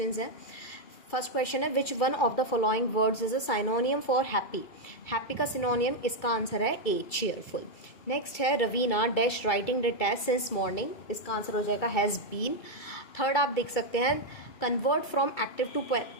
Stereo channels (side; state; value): right; late; 2.3 ms